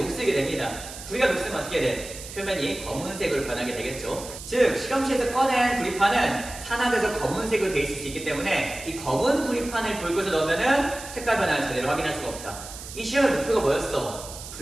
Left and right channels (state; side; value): noise; right; hiss, 12 dB below the sound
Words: 됩니다. 구리가 녹슬면 어떻게 돼? 표면이 검은색으로 변하게 되겠죠. 즉 실험실에서 꺼낸 구리판은 산화돼서 검은색으로 돼 있을 수 있기 때문에 이 검은 구리판을 붉은색 넣으면은 색깔 변화를 제대로 확인할 수가 없다. 이 실험의 목표가 뭐였어?